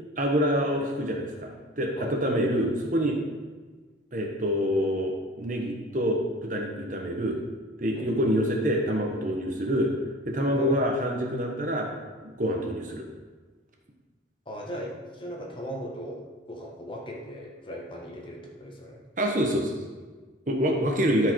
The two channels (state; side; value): normal; both; correlation 0.42